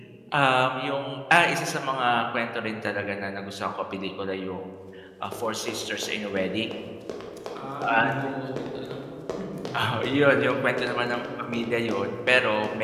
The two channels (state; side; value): identical; both; correlation 1.00